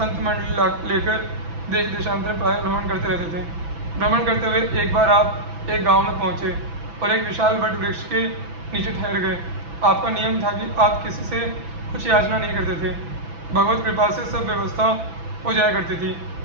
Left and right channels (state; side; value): late; left; 6.0 ms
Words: मंडली लेकर देश देशांतर प्राय भ्रमण करते रहते थे। भ्रमण करते हुए एक बार आप एक गांव में पहुंचे और एक विशाल वट वृक्ष के नीचे ठहर गए। आपका नियम था कि आप किसी से कुछ याचना नहीं करते थे। भगवत कृपा से सब व्यवस्था हो जाया करती थी,